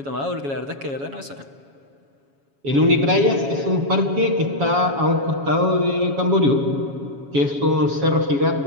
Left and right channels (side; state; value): left; late; 7.2 ms